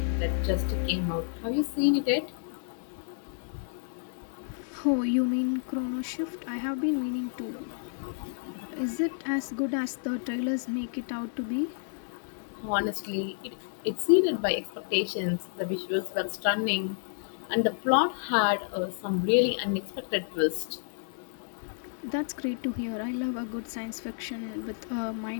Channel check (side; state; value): right; silent; 58 dB below the other